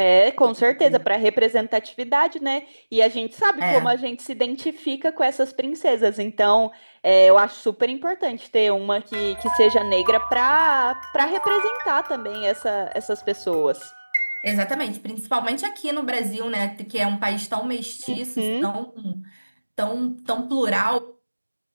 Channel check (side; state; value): both; inverted; correlation -1.00